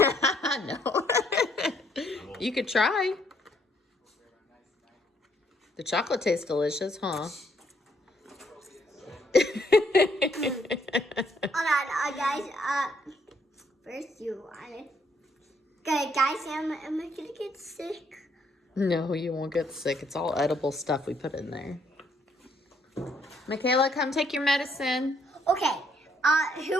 No. You could try. The chocolate tastes delicious, huh? Alright, guys. First you want it. Okay, guys, am I gonna get sick? No, you won't get sick. It's all edible stuff we put in there. Michaela, come take your medicine. Okay.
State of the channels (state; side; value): normal; both; correlation 0.70